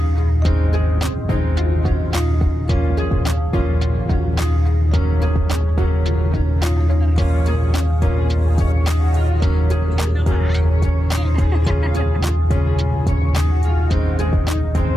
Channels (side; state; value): both; normal; correlation 0.90